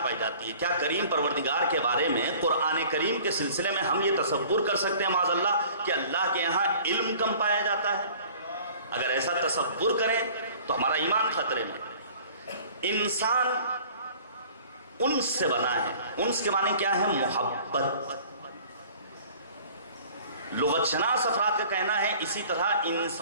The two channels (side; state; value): both; inverted; correlation -0.49